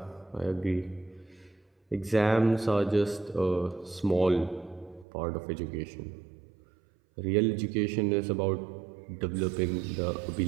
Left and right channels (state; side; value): drops out; left; at 5.1 s